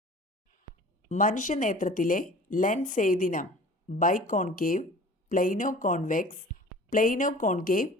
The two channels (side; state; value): both; normal; correlation 0.45